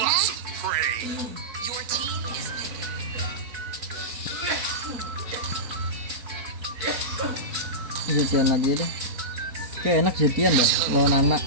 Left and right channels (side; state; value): left; late; 4.3 ms